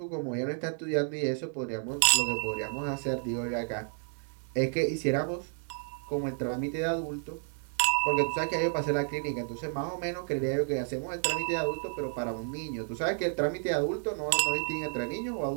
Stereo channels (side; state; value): left; silent; 57 dB below the other